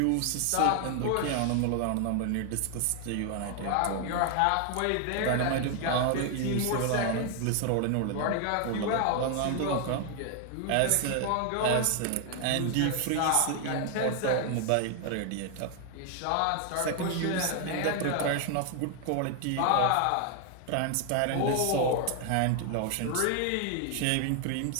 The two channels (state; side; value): different; both; correlation 0.00